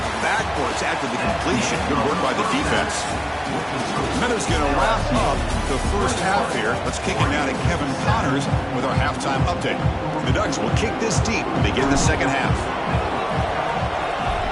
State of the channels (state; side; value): identical; both; correlation 1.00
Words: backwards after the completion. Good work by the defense. Minutes going to wrap up the first half here. Let's kick it now to Kevin Connors with our halftime update. The Ducks will kick this deep to begin the second half.